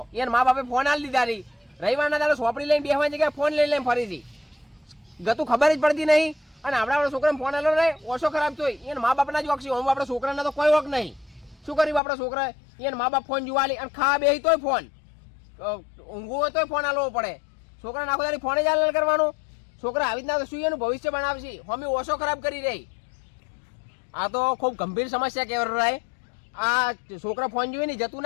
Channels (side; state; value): right; drops out; at 12.0 s